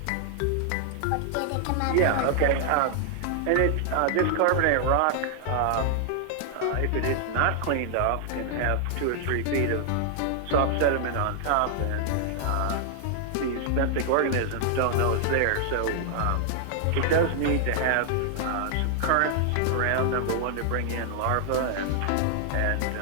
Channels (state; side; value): different; both; correlation 0.00